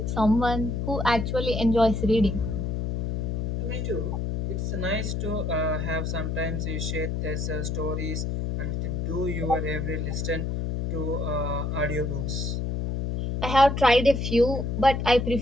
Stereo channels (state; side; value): noise; left; hum, 1 dB below the sound